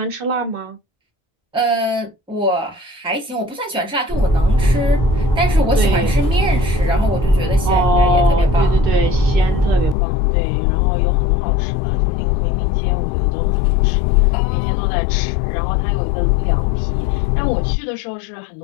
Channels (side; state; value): right; drops out; at 10.0 s